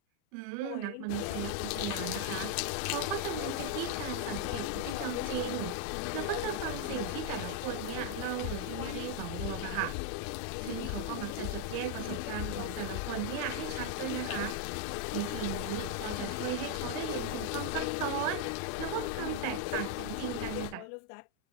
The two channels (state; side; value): different; both; correlation 0.00